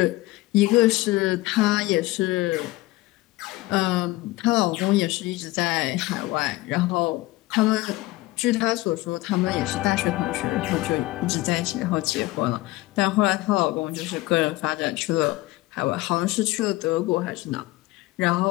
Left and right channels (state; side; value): quieter; right; 19.3 dB